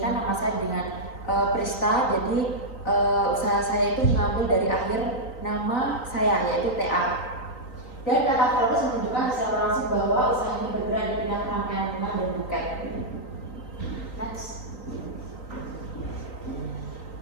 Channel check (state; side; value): late; right; 3.9 ms